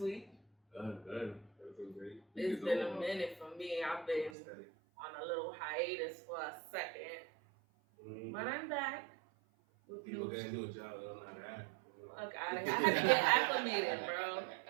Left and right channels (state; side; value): drops out; left; at 4.4 s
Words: Good. Everything great. It's been a minute for me. I've been on a little hiatus for a second. Mm-hmm. But I'm back. People can't do a job, they don't know how to act. Look, I had to get acclimated, bro.